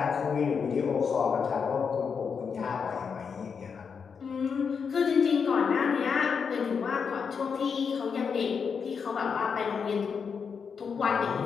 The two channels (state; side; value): quieter; right; 6.1 dB